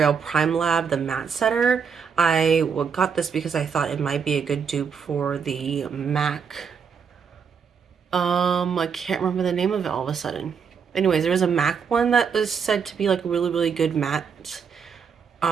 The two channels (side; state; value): left; quieter; 6.5 dB